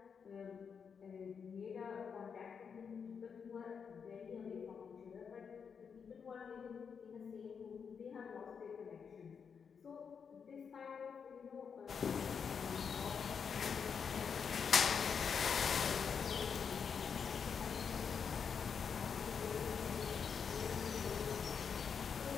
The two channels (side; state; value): right; quieter; 6.5 dB